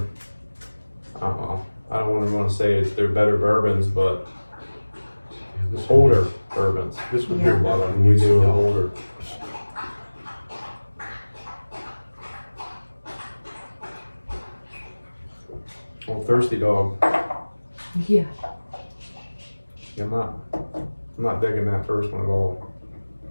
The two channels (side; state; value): both; inverted; correlation -1.00